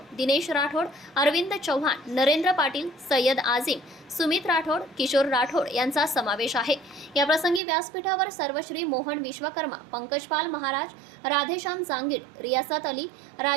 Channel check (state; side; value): drops out; left; at 7.6 s